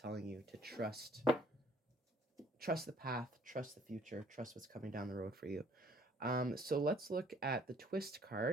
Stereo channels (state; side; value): normal; both; correlation 0.59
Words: you to trust the path, trust the future, trust what's coming down the road for you. So let's look at the Twist